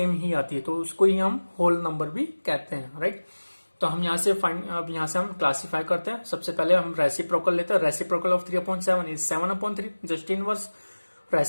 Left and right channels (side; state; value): both; inverted; correlation -1.00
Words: ही आती है, तो उसको ही हम होल नंबर भी कहते हैं, राइट. तो हम यहाँ से अब यहाँ से हम क्लासीफाई करते हैं. सबसे पहले हम रेसिप्रोकल लेते हैं. Reciprocal of 3/7 is 7/3, just inverse.